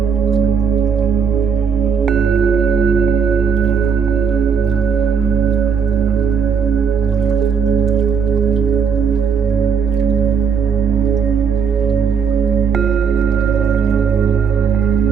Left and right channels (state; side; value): quieter; left; 6.3 dB